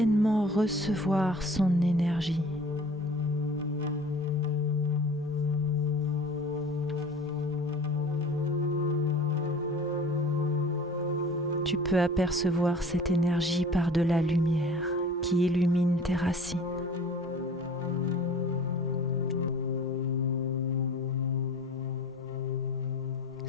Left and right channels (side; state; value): both; normal; correlation 0.44